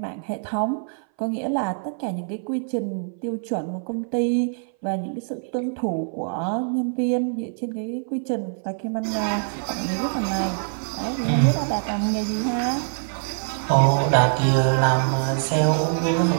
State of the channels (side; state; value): left; silent; 60 dB below the other